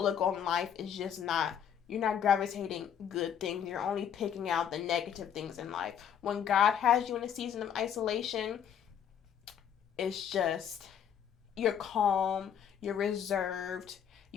on life is just not, you're not gravitating good things. You're only picking out the negative things in life. When God has you in a season of isolation, it's just, you're calm, you're reserved,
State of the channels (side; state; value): right; quieter; 8.6 dB